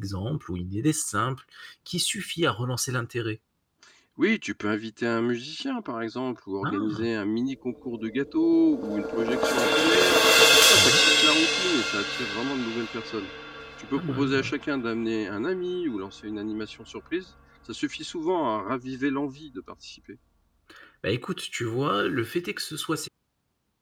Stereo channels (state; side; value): identical; both; correlation 1.00